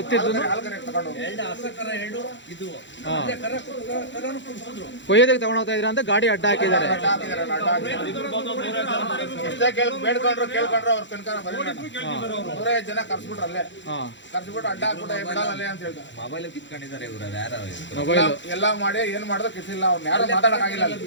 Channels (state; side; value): late; right; 0.53 ms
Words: ಕೊಯ್ಯೋದಕ್ಕೆ ತಗೊಂಡು ಹೋಗ್ತಾ ಇದೀರಾ ಅಂತ ಗಾಡಿ ಅಡ್ಡ ಹಾಕಿದ್ದಾರೆ. ಬೇಡ್ಕೊಂಡ್ರು ಕೇಳ್ಕೊಂಡ್ರು ಅವ್ರ ತನಕ 150 ಜನ ಕರ್ಸ್ಬಿಟ್ರು. ಅಲ್ಲೇ ಕರ್ಸ್ಬಿಟ್ಟು ಅಡ್ಡ ಹಾಕ್ಬಿಟ್ಟು ಬಿಡಲ್ಲ ಅಂತ ಹೇಳ್ತಾರೆ. ಮೊಬೈಲ್ ಎಲ್ಲ ಮಾಡಿ ಏನ್ ಮಾಡಿದ್ರು ಕಿಸಿಲ್ಲ. ಅವ್ರು ಯಾರು ಮಾತಾಡಕ್ಕಾಗಿಲ್ಲ.